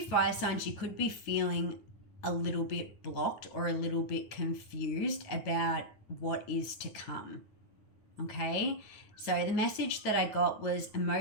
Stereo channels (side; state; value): right; late; 9.4 ms